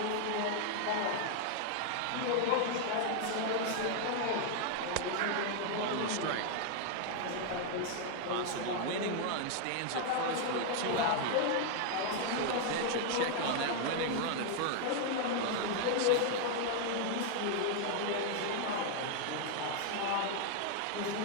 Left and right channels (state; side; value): different; both; correlation 0.00